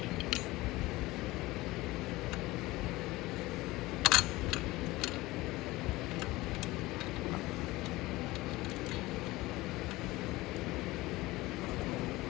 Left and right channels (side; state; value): right; quieter; 19.7 dB